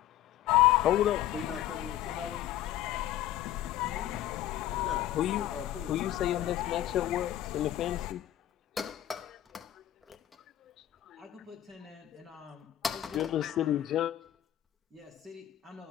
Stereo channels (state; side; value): quieter; right; 12.9 dB